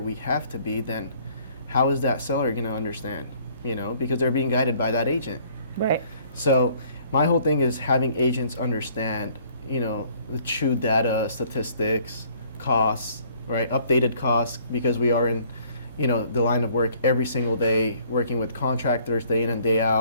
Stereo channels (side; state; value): both; inverted; correlation -0.60